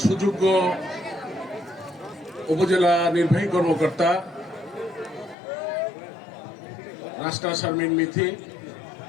সুযোগ্য উপজেলা নির্বাহী কর্মকর্তা রাস্তা শারমিন মিথি।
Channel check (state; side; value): drops out; right; at 5.4 s